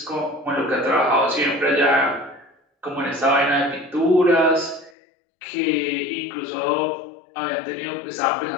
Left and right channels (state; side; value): drops out; right; at 4.9 s